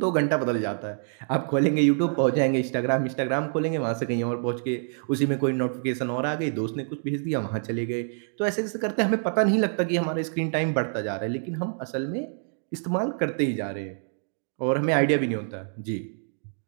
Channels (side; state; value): left; silent; digital silence